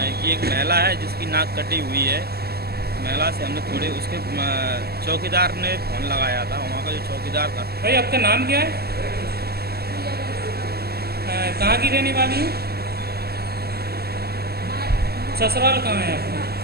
कि एक महिला है जिसकी नाक कटी हुई है। महिला से हमने थोड़े उसके चौकीदार ने फ़ोन लगाया था, वहाँ का जो चौकीदार था। भाई आपका नाम क्या है? कहाँ की रहने वाली है? ससुराल कहाँ है आपका?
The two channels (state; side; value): late; left; 0.46 ms